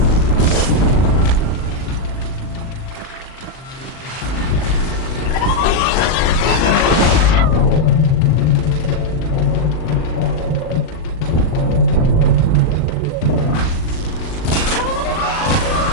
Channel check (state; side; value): late; right; 38 ms